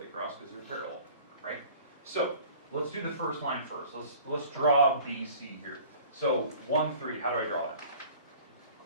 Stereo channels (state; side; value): inverted; both; correlation -0.47